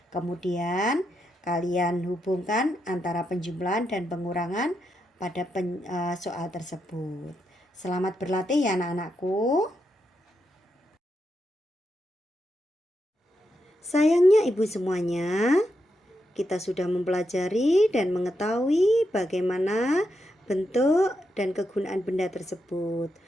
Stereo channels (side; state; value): both; normal; correlation 0.84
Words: Kemudian kalian hubungkan antara penjumlahan dan pengurangan pada soal tersebut. Selamat berlatih ya anak-anakku. Sayangnya ibu semuanya, kita sudah mempelajari dan mengetahui bagaimana bentuk dan kegunaan benda tersebut.